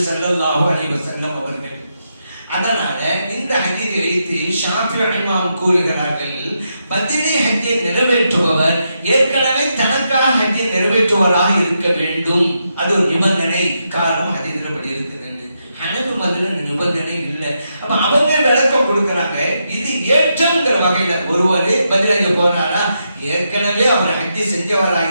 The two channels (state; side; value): inverted; both; correlation -0.83